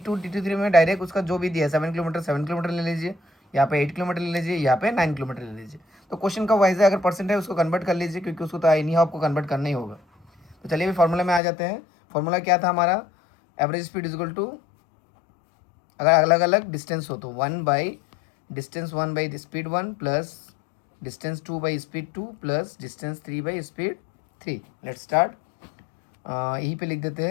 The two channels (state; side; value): drops out; right; at 11.4 s